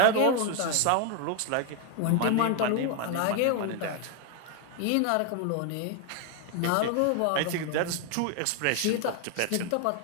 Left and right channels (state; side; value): different; both; correlation 0.01